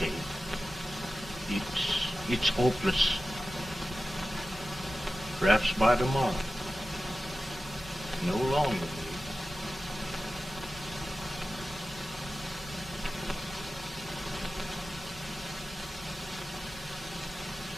Abe. It's hopeless. Perhaps by tomorrow. No longer.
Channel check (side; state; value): both; normal; correlation 0.94